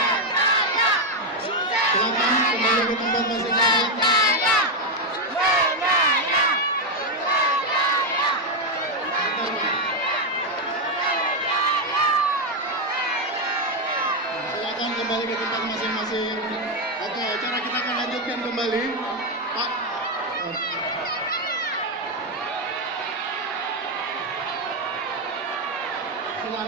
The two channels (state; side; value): normal; both; correlation 0.04